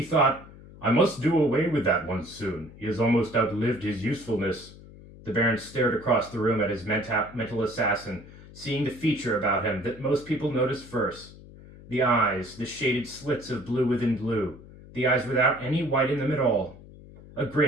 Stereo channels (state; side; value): noise; left; hum, 19 dB below the sound